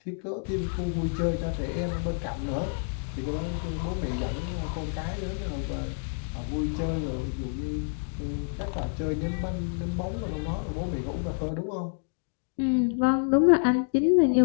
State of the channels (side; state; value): right; silent; 59 dB below the other